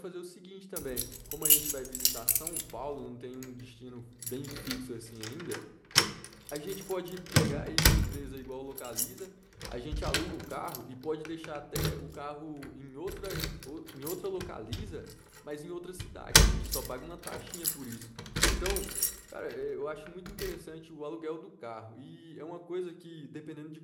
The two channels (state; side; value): identical; both; correlation 1.00